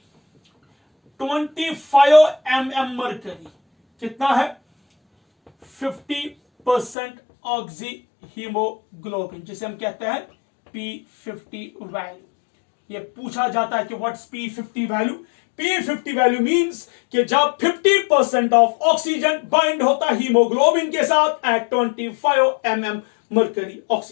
25 mm mercury कितना है? 50% ऑक्सी हीमोग्लोबिन, जिसे हम कहते हैं P50 वैल्यू। ये पूछा जाता है कि what's P50 value? P50 value means कि जब 50% ऑफ ऑक्सीजन बाइंड होता है हीमोग्लोबिन के साथ एट 25 mm मरकरी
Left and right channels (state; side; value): drops out; right; at 7.0 s